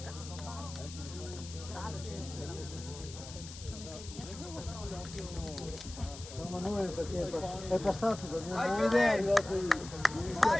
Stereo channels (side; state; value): left; noise; hiss, 13 dB below the sound